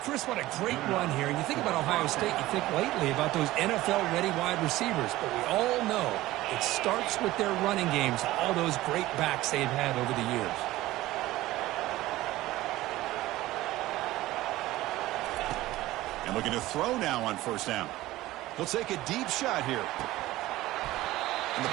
what a great run here. And you think about Ohio State, you think lately about those NFL-ready wide receivers. But we all know it starts with their running games, all those great backs they've had over the years. And looking to throw now on 1st down. He'll take a deep shot here. And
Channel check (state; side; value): quieter; left; 16.9 dB